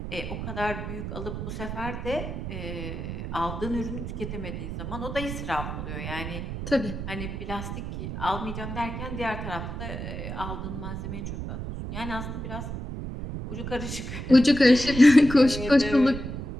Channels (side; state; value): right; noise; rumble, 6 dB below the sound